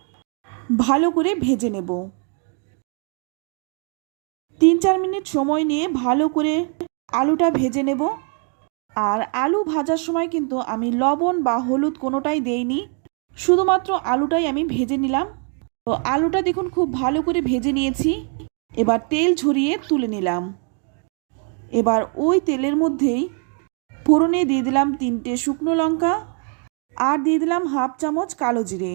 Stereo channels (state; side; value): quieter; left; 39.2 dB